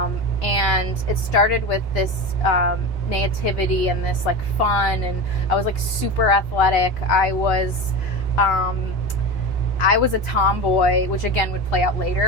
it started with this naivety and this like fun, and I was like super athletic. I was a tomboy, which again would play out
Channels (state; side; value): normal; both; correlation 0.25